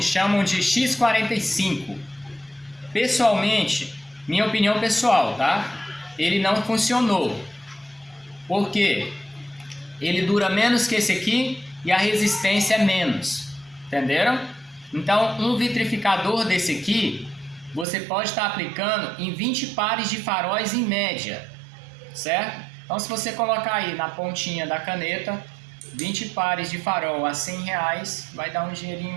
chamam de X45. Pessoalmente, minha opinião pessoal, tá? Ele não funcionou. Por quê? Ele dura menos que esse aqui e a resistência é menos. Entenderam? Então, um vitrificador desse aqui, você pode estar aplicando em 20 pares de faróis em média, certo? Então, se você colocar aí na pontinha da caneta, 20 pares de farol a 100 reais, vai dar um dinheirinho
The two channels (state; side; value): drops out; left; at 17.9 s